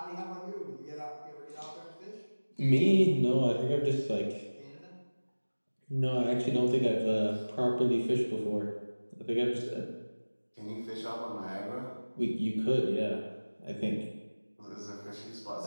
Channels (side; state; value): both; inverted; correlation -1.00